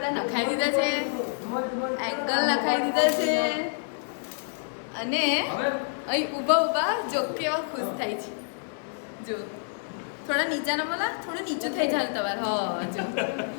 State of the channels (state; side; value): silent; right; digital silence